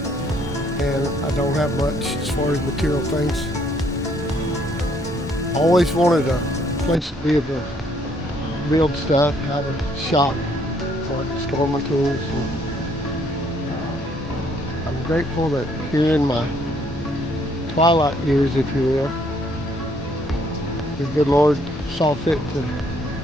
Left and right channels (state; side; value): normal; both; correlation 0.66